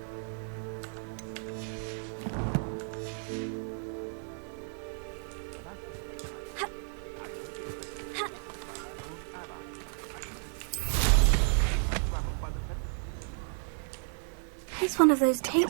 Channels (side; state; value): left; silent; 56 dB below the other